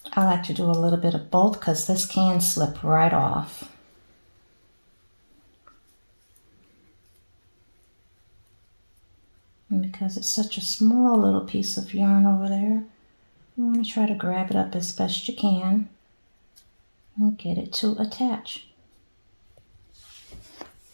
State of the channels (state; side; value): inverted; both; correlation -1.00